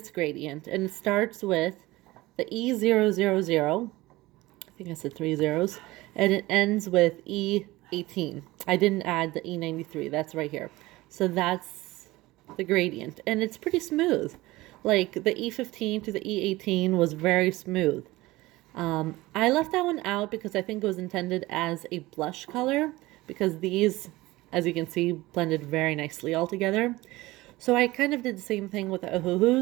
gradient, and it starts with the E000. I think I said 3 zeros, and it ends with E18. I didn't add the E93. That's right here. So that's the gradient, and it's pretty smooth. Like the E15 to the E18 was very smooth. I left that one out because I think it was intended as a blush color, because these, as you can see, blended very nicely all together. So I kind of did the same thing with the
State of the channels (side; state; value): left; quieter; 19.3 dB